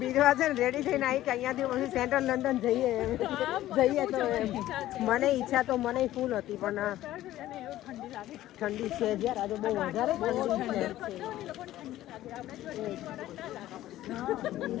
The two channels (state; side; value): quieter; right; 14.4 dB